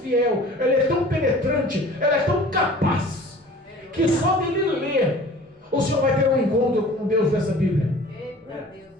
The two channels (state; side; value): normal; both; correlation 0.45